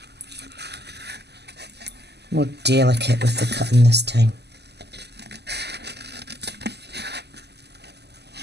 delicate with the cutting this time.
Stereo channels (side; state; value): left; late; 0.49 ms